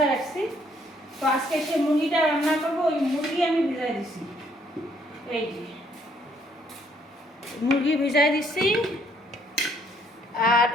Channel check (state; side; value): normal; both; correlation 0.67